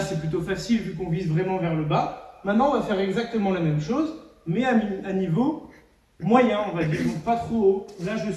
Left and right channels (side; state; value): both; identical; correlation 1.00